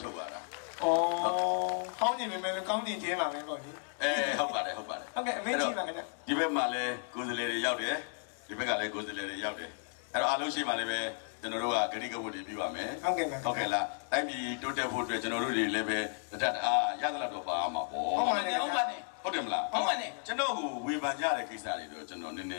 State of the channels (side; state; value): right; silent; 55 dB below the other